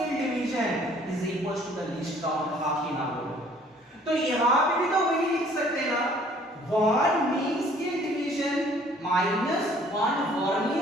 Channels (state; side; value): normal; both; correlation 0.57